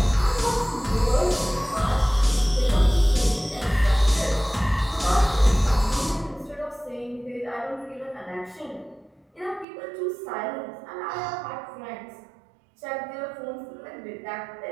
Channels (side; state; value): left; drops out; at 9.7 s